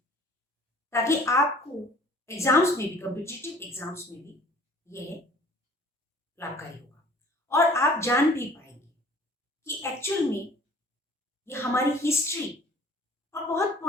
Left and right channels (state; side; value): normal; both; correlation 0.51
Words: ताकि आपको एग्जाम्स में भी, कॉम्पिटिटिव एग्जाम्स में भी यह लाभकारी होगा और आप जान भी पाएंगे कि एक्चुअल में ये हमारी हिस्ट्री और बहुत